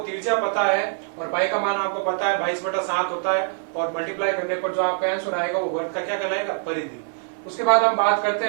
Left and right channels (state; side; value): silent; left; digital silence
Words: पता है और पाई का मान आपको पता है 22/7 होता है, और मल्टीप्लाई करने पर जो आपका आंसर आएगा वो वर्ग का क्या कहलाएगा? परिधि। उसके बाद हम बात करते